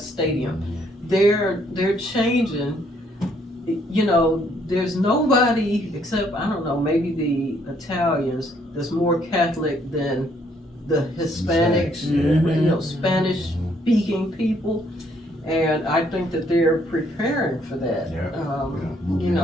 They're changing. You know, there's nobody except, I don't know, maybe the Italians that's more Catholic than the Hispanics, you know, Spanish speaking people. And I think that they're preparing for that. You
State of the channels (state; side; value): normal; both; correlation 0.68